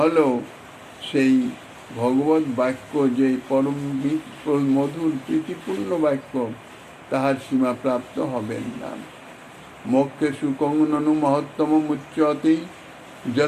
সেই ভগবত বাক্য যে পরম মধুর প্রীতিপূর্ণ বাক্য, তাহার সীমা প্রাপ্ত হবেন না। মোক্ষে সুকং ননু মহত্তম মুচ্যতে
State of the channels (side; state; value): both; identical; correlation 1.00